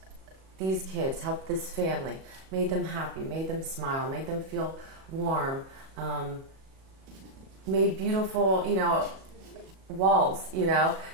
these kids, helped this family, made them happy, made them smile, made them feel warm, made beautiful, walls,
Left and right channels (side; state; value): left; late; 37 ms